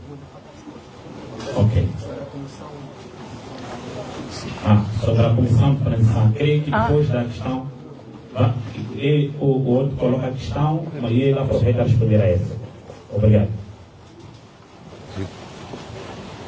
Ok. Sobre a comissão de transição, creio que depois da questão... o outro coloca a questão e ele aproveita a responder a essa. Obrigado.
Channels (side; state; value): both; identical; correlation 1.00